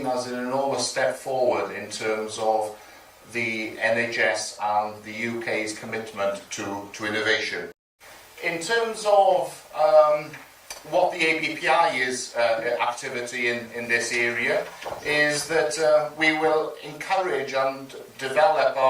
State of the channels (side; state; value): both; identical; correlation 1.00